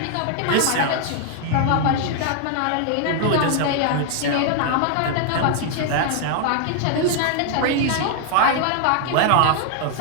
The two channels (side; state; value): both; different; correlation 0.00